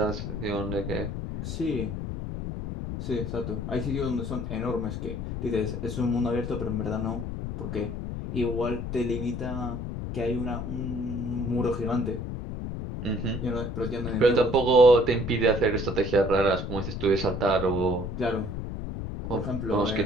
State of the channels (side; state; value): left; noise; rumble, 5 dB below the sound